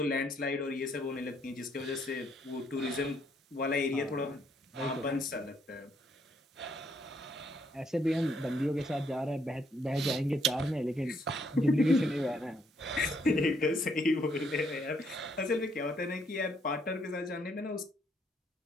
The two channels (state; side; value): normal; both; correlation 0.71